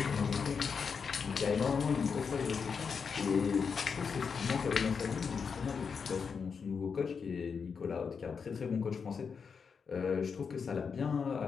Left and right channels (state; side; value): quieter; right; 5.9 dB